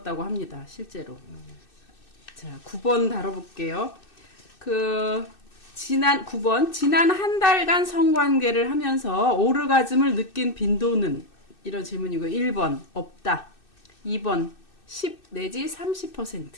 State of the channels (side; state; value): right; late; 2.6 ms